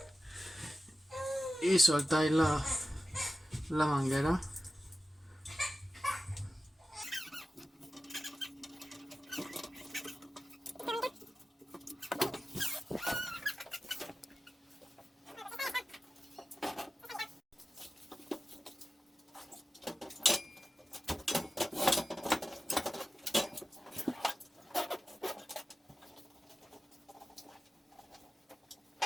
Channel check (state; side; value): normal; both; correlation 0.94